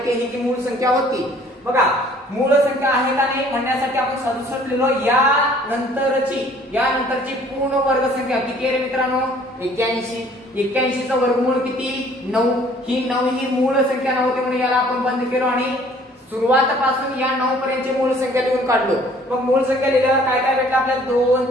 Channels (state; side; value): normal; both; correlation 0.56